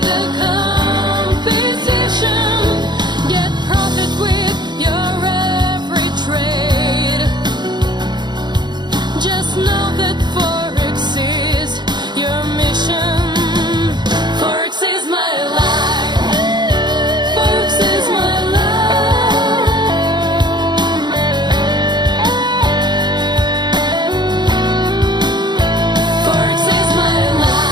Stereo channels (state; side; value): late; left; 0.21 ms